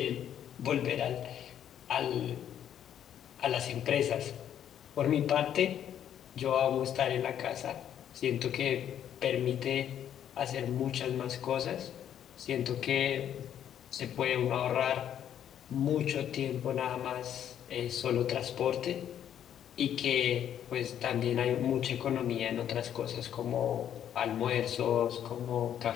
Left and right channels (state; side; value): quieter; right; 9.9 dB